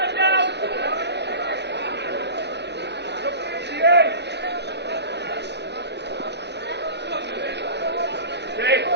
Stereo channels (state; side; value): late; left; 0.50 ms